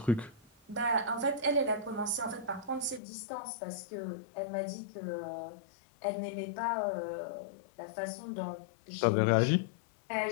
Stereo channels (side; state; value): right; drops out; at 3.0 s